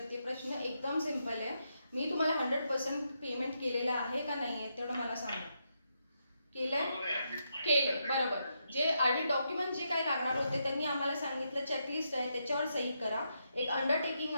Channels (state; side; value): inverted; both; correlation -0.82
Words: प्रश्न एकदम सिंपल आहे. मी तुम्हाला 100% पेमेंट केलेलं आहे का नाही आहे तेवढं मला सांगा. केलं बरोबर. जे आधी डॉक्युमेंट जे काही लागणार होते त्यांनी आम्हाला सांगितलं चेकलिस्ट आहे त्याच्यावर सही करा, एक अंडरटेकिंग